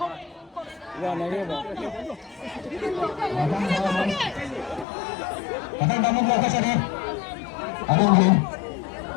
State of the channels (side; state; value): right; drops out; at 4.9 s